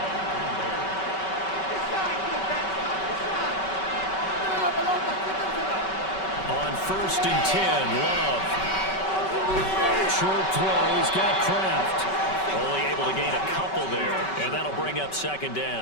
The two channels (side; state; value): right; late; 5.3 ms